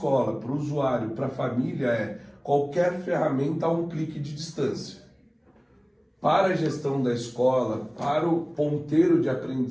para o usuário, para a família, qualquer ferramenta a um clique de distância. Para a gestão da escola, para o ponteiro de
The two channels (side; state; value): both; identical; correlation 1.00